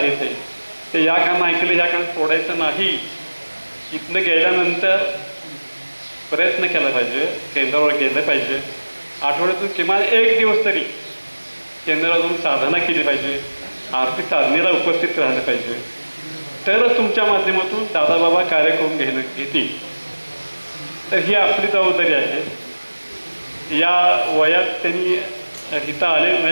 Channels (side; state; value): both; inverted; correlation -1.00